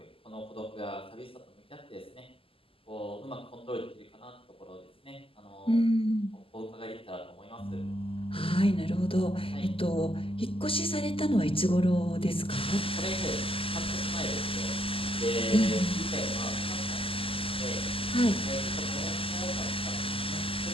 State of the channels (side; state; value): right; late; 0.26 ms